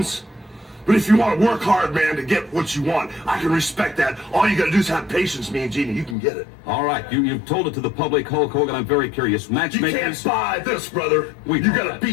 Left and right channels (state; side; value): drops out; right; at 6.2 s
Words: But if you want to work hard, man, to get what you want, I can respect that. All you got to do is have patience, me and Genie. You can get it. All right, you've told it to the public, Hulk Hogan. I'm very curious. You Matchmakers, can't buy this, brother. We You know got to that.